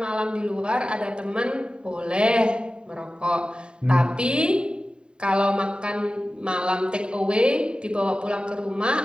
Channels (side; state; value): left; late; 0.050 ms